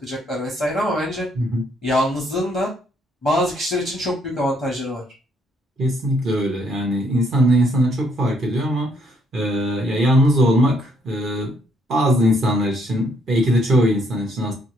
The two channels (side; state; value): both; normal; correlation 0.70